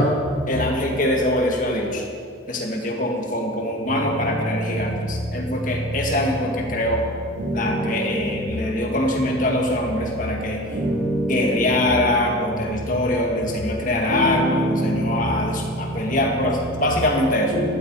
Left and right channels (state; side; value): normal; both; correlation 0.33